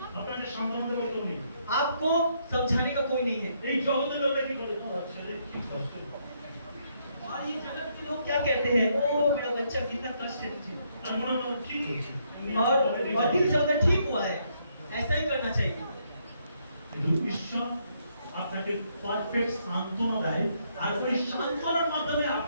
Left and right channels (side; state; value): both; inverted; correlation -0.73